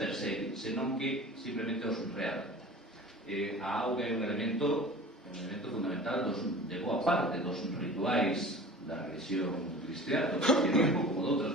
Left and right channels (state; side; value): normal; both; correlation 0.40